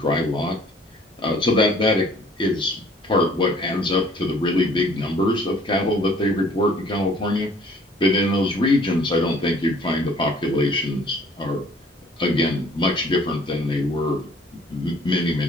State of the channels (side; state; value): both; normal; correlation 0.56